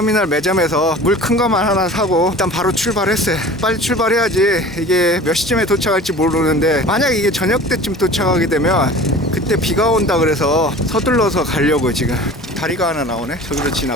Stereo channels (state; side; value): normal; both; correlation 0.41